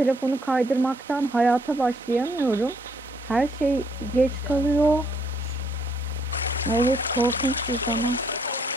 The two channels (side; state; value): both; normal; correlation 0.69